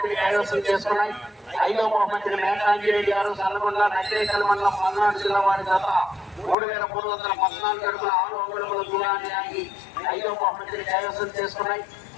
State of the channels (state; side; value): drops out; right; at 6.6 s